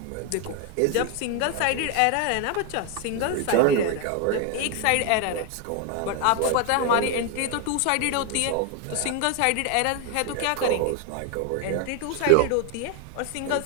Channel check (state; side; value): different; both; correlation 0.01